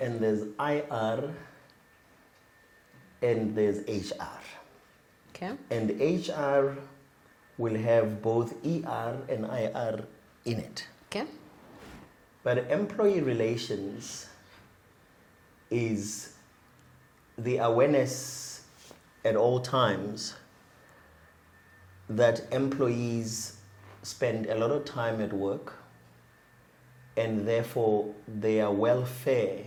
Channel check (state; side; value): identical; both; correlation 1.00